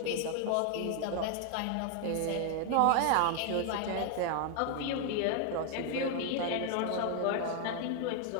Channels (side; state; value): both; different; correlation 0.00